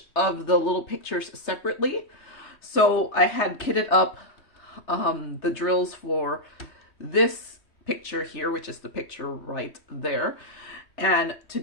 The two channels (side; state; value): right; late; 3.1 ms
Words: of the little pictures separately. So I had kitted up the drills for this picture here, which is the picture right there. And